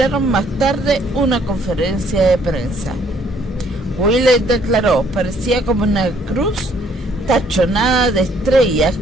más tarde una conferencia de prensa. Willey declaró: parecía como una cruz tachonada de estrellas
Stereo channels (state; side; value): normal; both; correlation 0.64